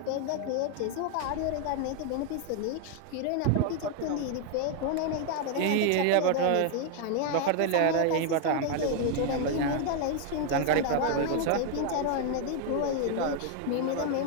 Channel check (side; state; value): both; different; correlation 0.00